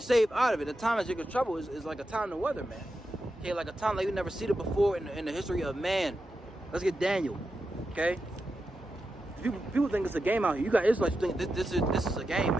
out of it. The time of Jacob's trouble is like a time to weather, man. Okay, like a time like we've never seen it before in the history of man. Let's get Daniel. Okay, people think it's a game out here. You got Israelites think this is a game,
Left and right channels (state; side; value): normal; both; correlation 0.89